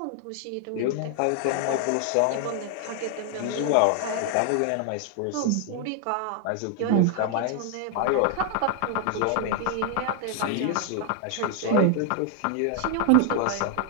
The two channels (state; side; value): different; both; correlation 0.00